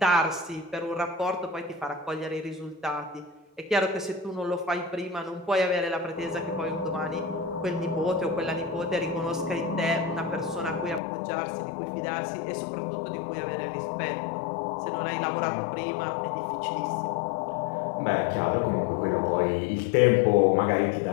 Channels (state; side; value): drops out; right; at 11.0 s